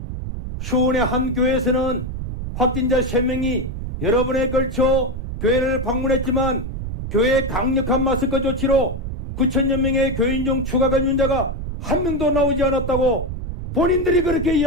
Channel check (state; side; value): noise; right; rumble, 6 dB below the sound